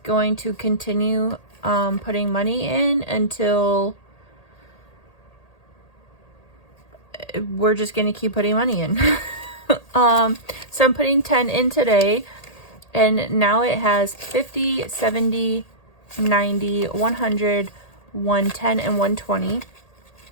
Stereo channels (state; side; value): late; right; 1.8 ms